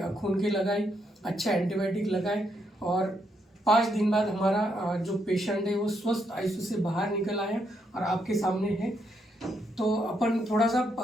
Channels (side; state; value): both; normal; correlation 0.77